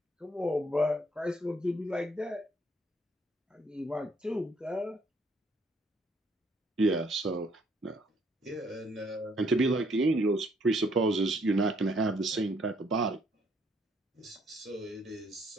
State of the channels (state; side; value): normal; both; correlation 0.67